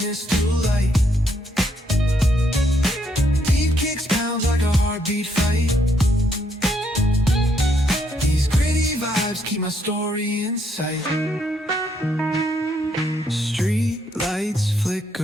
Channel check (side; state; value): both; normal; correlation 0.73